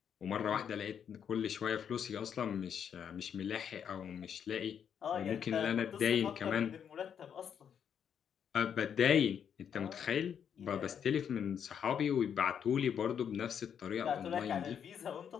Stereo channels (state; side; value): quieter; right; 8.1 dB